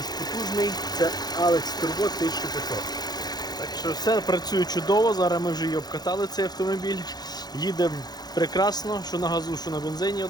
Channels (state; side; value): late; right; 0.19 ms